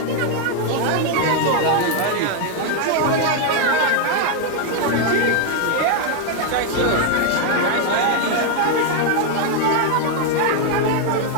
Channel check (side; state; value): both; different; correlation 0.00